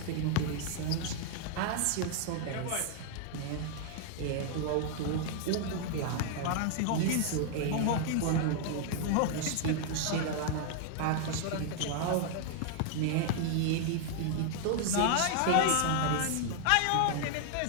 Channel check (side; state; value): both; different; correlation 0.00